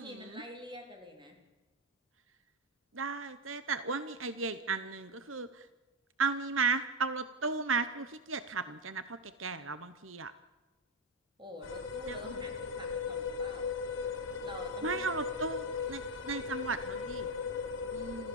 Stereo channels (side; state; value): both; normal; correlation 0.06